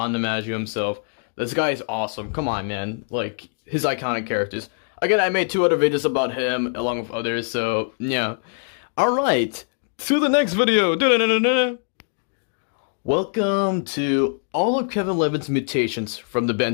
DiMaggio himself. This guy is awesome. Come on, man. Like, his iconic characters. Again, I made 2 other videos about him along with others, so yeah. Alright, to the next video. Da-da-da-da-da. Welcome to all of Kevin Levin's mutations from the Ben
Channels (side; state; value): right; silent; 59 dB below the other